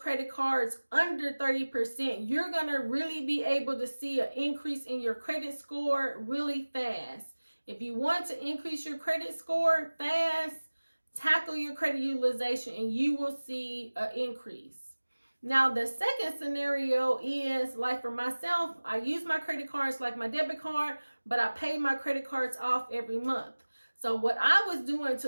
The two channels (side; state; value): both; inverted; correlation -1.00